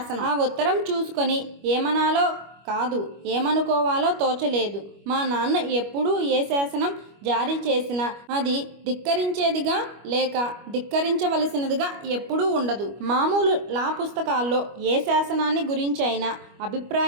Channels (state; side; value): late; left; 25 ms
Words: ఆ ఉత్తరం చూసుకొని ఏమనాలో కాదు ఏమనుకోవాలో తోచలేదు. మా నాన్న ఎప్పుడూ ఏ శాసనం జారీ చేసినా అది ధిక్కరించేదిగా లేక ధిక్కరించవలసినదిగా ఎప్పుడూ ఉండదు. మామూలు లా పుస్తకాల్లో ఏ శాసనాన్ని గురించి అయినా